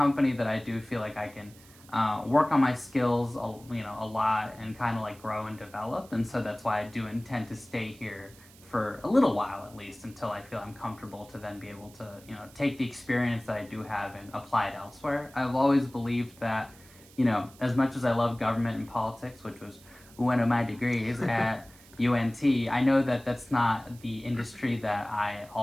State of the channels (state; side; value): noise; right; hiss, 24 dB below the sound